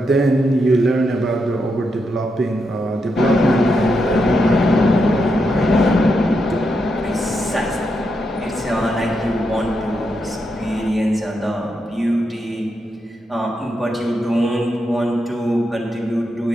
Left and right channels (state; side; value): normal; both; correlation 0.83